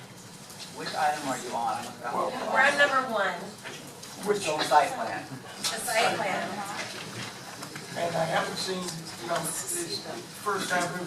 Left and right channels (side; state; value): both; identical; correlation 1.00